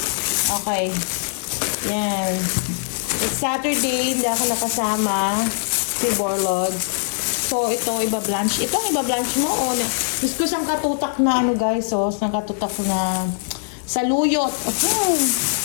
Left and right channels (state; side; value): silent; right; digital silence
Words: Okay. Yan. It's Saturday. Hindi ako nakasama. Si Borlog. So, ito, iba-blanch. Ito ang iba-blanch mo, o na. Gusto ko sang katutak na, ano guys, oh. Sang katutak ko na saluyot.